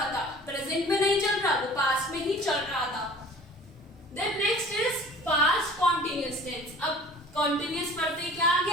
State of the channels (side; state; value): both; normal; correlation 0.46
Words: था, प्रेजेंट में नहीं चल रहा, वो पास्ट में ही चल रहा था। Then next is past continuous tense. अब कॉन्टिन्यूअस पढ़ते क्या आ